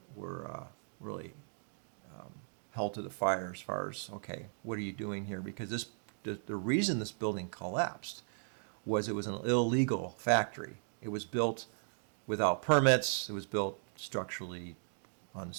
really held to the fire as far as, okay, what are you doing here? Because the reason this building collapsed was it was an illegal factory. It was built without permits. It was built structurally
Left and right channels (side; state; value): left; silent; digital silence